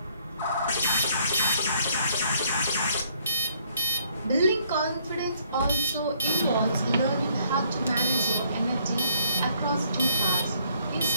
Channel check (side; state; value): both; inverted; correlation -0.66